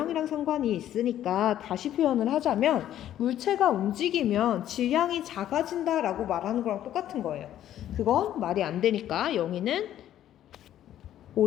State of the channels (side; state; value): right; quieter; 11.8 dB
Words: 상관이 있으니까 다시 표현을 하자면 물체가 움직이면 질량이 작아진다라고 말하는 거랑 똑같은 거예요. 그건 말이 안 되니까 영희는